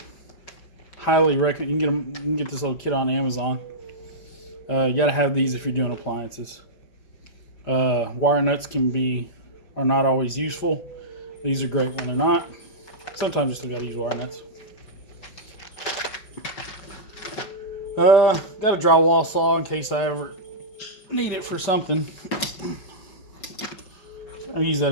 Highly recommend. You can get this little kit on Amazon. You gotta have these if you're doing appliances. Wire nuts are not always useful. These are great when they're not. Sometimes you still gotta use wire nuts. Got a drywall saw in case I ever need it for something. I use that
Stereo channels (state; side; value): late; right; 5.0 ms